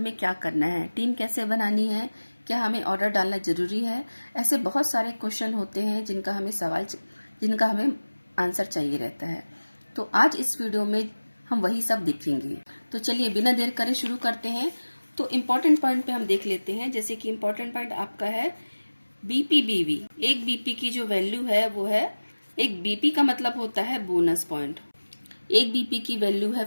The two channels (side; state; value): both; inverted; correlation -1.00